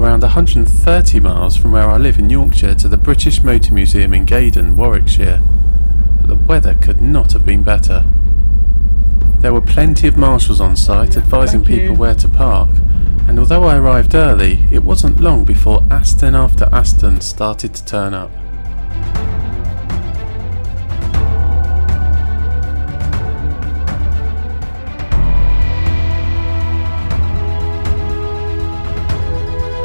130 miles from where I live in Yorkshire to the British Motor Museum in Gaydon, Warwickshire. But the weather could not have been better. There were plenty of marshals on site advising people where to park, and although I arrived early, it wasn't long before Aston after Aston started to turn up.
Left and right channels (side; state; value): both; inverted; correlation -1.00